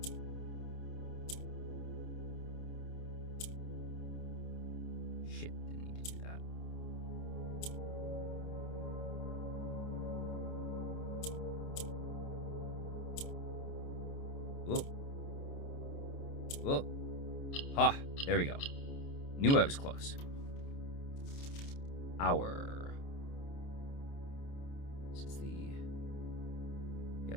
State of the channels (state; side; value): late; right; 29 ms